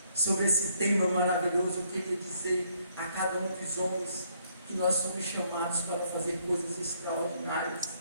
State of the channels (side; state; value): both; inverted; correlation -0.69